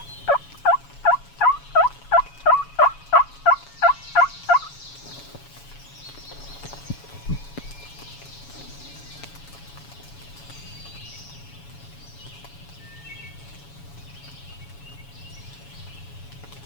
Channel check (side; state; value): right; late; 7.1 ms